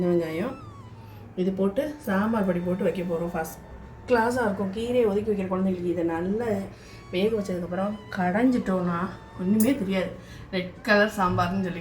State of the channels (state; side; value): identical; both; correlation 1.00